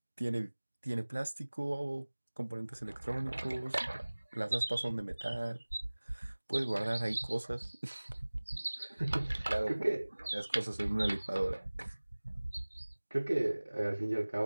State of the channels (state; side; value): inverted; both; correlation -1.00